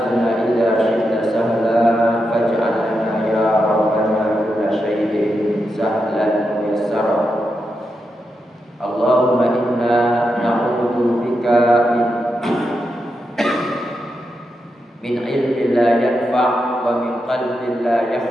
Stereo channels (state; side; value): normal; both; correlation 0.86